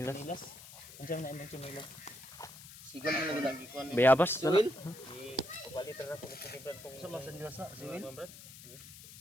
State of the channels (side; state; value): left; noise; hiss, 16 dB below the sound